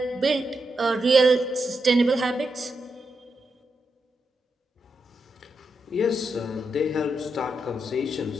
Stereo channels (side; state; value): both; normal; correlation 0.85